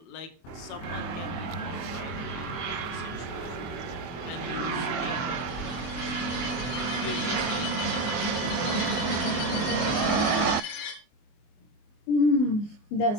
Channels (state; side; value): late; right; 24 ms